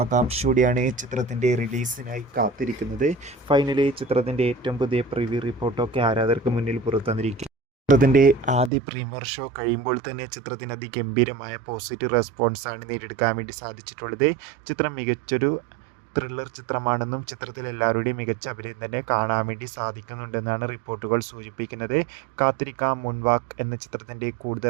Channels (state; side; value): drops out; left; at 8.7 s